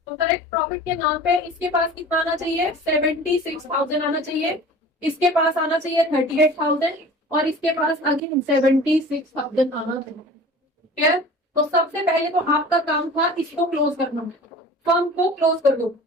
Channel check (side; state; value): both; normal; correlation 0.41